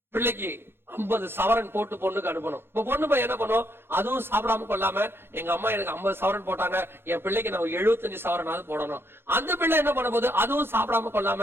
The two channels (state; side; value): late; left; 0.11 ms